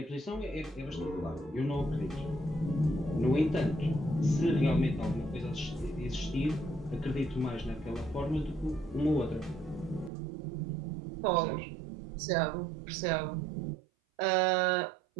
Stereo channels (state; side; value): drops out; left; at 10.1 s